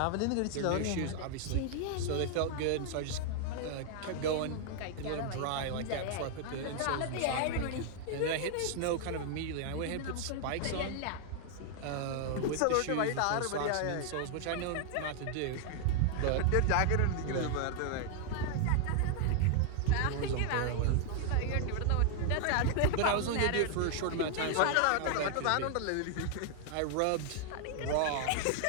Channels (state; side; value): different; both; correlation 0.00